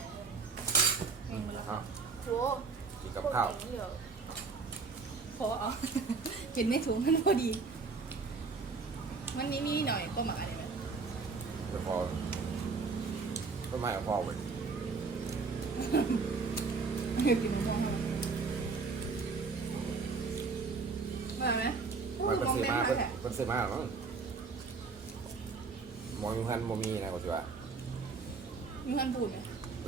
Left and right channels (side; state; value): left; quieter; 4.6 dB